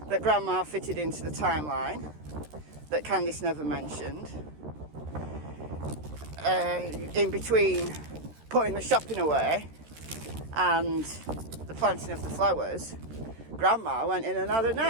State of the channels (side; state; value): left; late; 13 ms